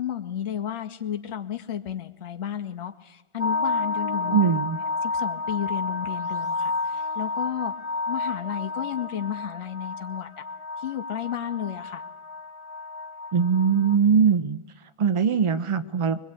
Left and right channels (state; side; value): late; left; 1.4 ms